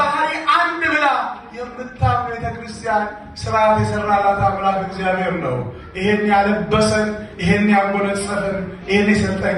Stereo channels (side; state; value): both; identical; correlation 1.00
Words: አንድ ብላ የምታምነው ቤተ ክርስቲያን ስርዓት የሰራላት አምላክ እግዚአብሔር ነው። ይሄን ያለበሰን፣ ይሄን ያጎነጸፈን፣ ይሄን የሰጠን